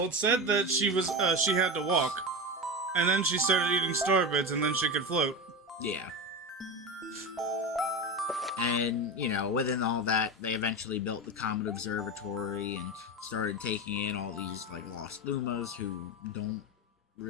it said that she had to walk, and then she started eating star bits, and then she could float. Yeah. And, within all that, they eventually built the Comet Observatory and started taking in all these, like, lost Lumas who don't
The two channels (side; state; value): both; normal; correlation 0.21